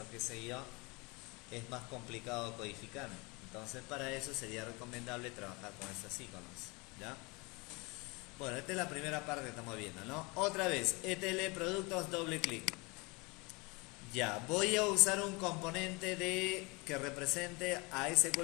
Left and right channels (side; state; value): right; quieter; 27.3 dB